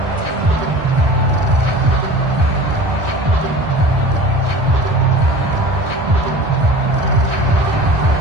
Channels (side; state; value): left; late; 1.4 ms